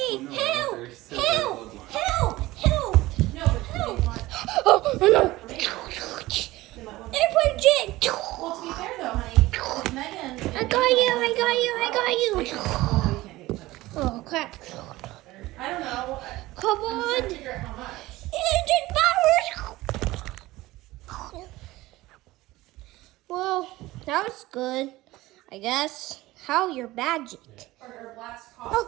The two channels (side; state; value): left; quieter; 18.3 dB